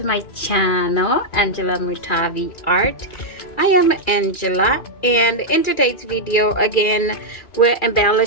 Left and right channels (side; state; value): right; late; 2.4 ms